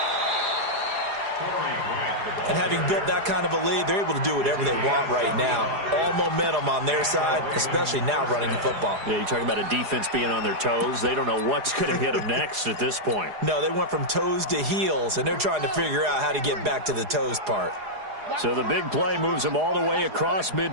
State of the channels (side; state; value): left; late; 4.8 ms